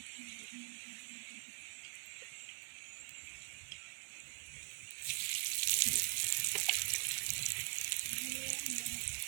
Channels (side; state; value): left; silent; digital silence